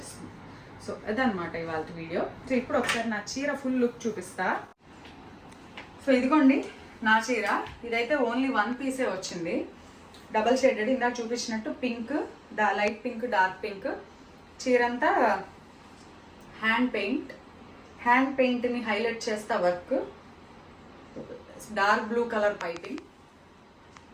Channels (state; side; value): identical; both; correlation 1.00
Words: సో అదనమాట ఇవాళ వీడియో. సో ఇప్పుడు ఒకసారి నా చీర ఫుల్ లుక్ చూపిస్తా. సో ఇదిగోండి నా చీర. ఇదైతే ఓన్లీ 1 పీసే వచ్చింది, డబల్ షేడెడ్. ఇందాక చూపించినట్టు pink, light pink, dark pink. చీర అంతా హ్యాండ్ పెయింట్ని హైలైట్ చేస్తా work. Dark blue colour piping.